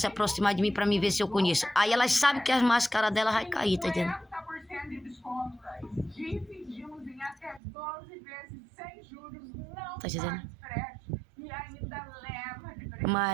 aproximar de mim para me ver se eu conheço. Aí elas sabem que as máscaras dela vai cair, tá entendendo? Dividimos em até 12 vezes sem juros, não tá dizendo? e ainda leva de presente.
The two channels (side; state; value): left; drops out; at 7.6 s